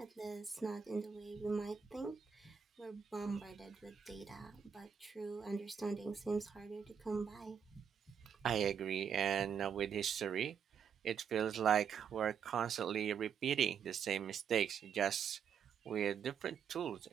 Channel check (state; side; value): quieter; left; 7.3 dB